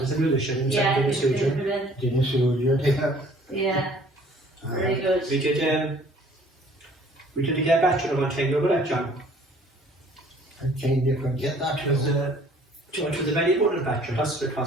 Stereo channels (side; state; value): both; normal; correlation 0.55